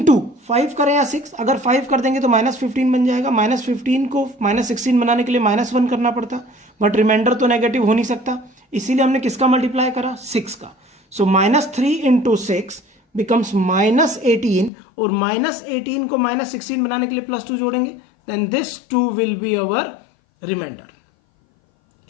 5 करें या 6, अगर 5 कर देंगे तो -15 बन जाएगा। -15 को -16 बनाने के लिए -1 करना पड़ता, बट रिमाइंडर तो नेगेटिव हो नहीं सकता, इसीलिए हमने किसका मल्टीप्लाई करा? 6 का। सो -3 इंटू 6 बिकम्स -18, और -18 को -16 बनाने के लिए +2 जोड़ेंगे, then this 2 will be our remainder.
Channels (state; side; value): drops out; right; at 14.7 s